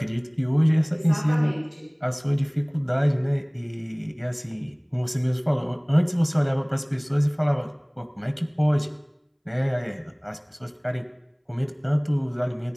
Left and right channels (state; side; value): identical; both; correlation 1.00